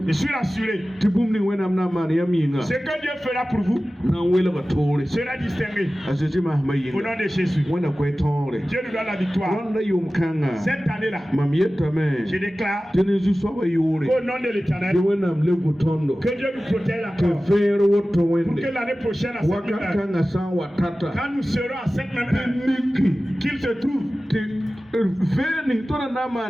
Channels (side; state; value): both; normal; correlation 0.96